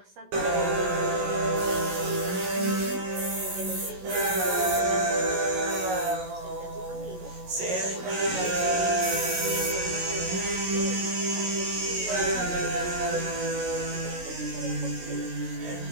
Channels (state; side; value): late; left; 16 ms